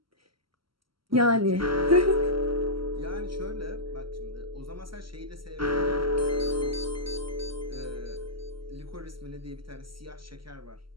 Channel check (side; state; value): left; late; 0.74 ms